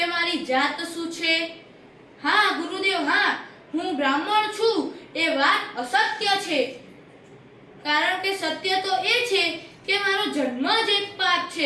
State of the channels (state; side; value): identical; both; correlation 1.00